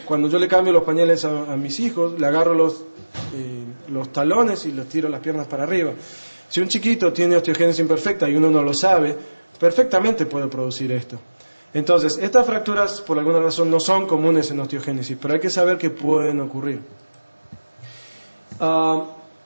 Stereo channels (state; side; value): inverted; both; correlation -1.00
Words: Cuando yo le cambio los pañales a mis hijos, le agarro los talones y los tiro las piernas para arriba. Si un chiquito tiene osteogénesis imperfecta y uno no lo sabe, perfectamente puede producir esto. Entonces, estas fracturas por alguna razón no son comunes en osteogénesis, pero hay que saber que pueden ocurrir.